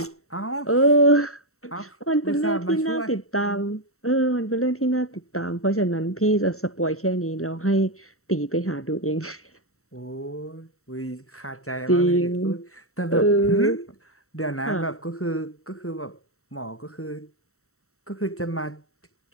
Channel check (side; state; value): right; late; 0.64 ms